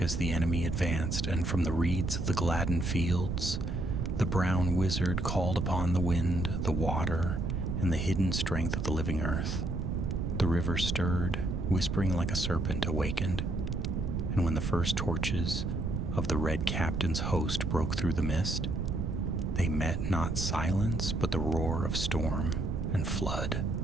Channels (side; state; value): right; noise; rumble, 1 dB below the sound